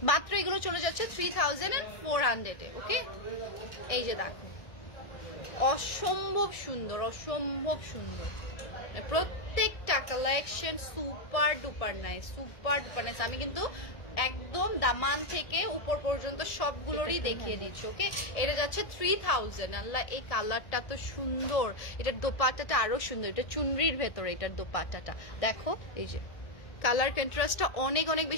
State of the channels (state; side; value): late; right; 1.7 ms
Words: মাত্র এগুলো চলে যাচ্ছে 3400 এ। ওকে, এই যে দেখো, অসম্ভব সুন্দর। প্রত্যেকটা কালেকশন সুপার ডুপার নাইস। আমি কিন্তু একদম দামান থেকে উপর পর্যন্ত সবগুলোরই দেখিয়ে দিচ্ছি। ওকে, এটা যাচ্ছে 3000। আল্লাহ, এই কালারটা তো সুন্দর। এটার দোপাট্টাটা আরো সুন্দর, এটা চুনরির ভেতরে এটার দোপাট্টাটা দেখো। এই যে কালার কন্ট্রাস্টটা অনেক অনেক